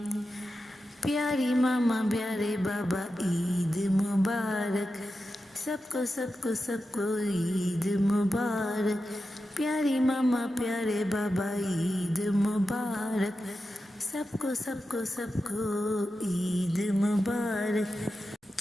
प्यारी मामा प्यारे बाबा ईद मुबारक, सबको सबको सबको ईद मुबारक। प्यारी मामा प्यारे बाबा ईद मुबारक, सबको सबको सबको ईद मुबारक।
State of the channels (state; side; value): normal; both; correlation 0.91